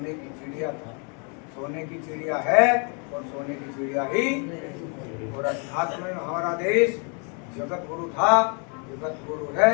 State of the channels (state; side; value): quieter; right; 37.4 dB